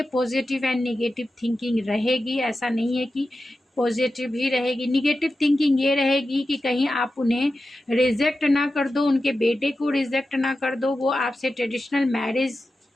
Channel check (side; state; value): both; normal; correlation 0.92